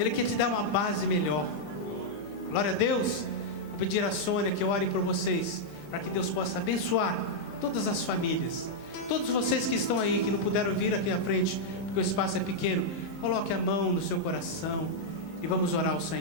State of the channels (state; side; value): normal; both; correlation -0.04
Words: quer te dar uma base melhor. Glória a Deus. Vou pedir a Sônia que ore por vocês, para que Deus possa abençoar todas as famílias. Todos vocês que estão aí, que não puderam vir aqui à frente, porque o espaço é pequeno, coloque a mão no seu coração e vamos orar ao